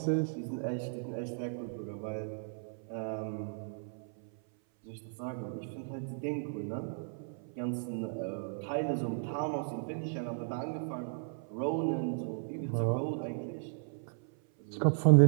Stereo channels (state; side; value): silent; left; 54 dB below the other